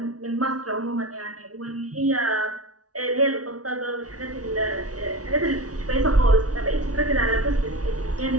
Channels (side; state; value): left; late; 0.67 ms